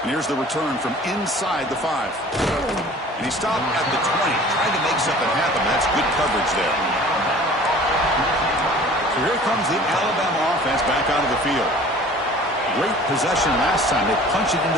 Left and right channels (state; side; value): normal; both; correlation 0.47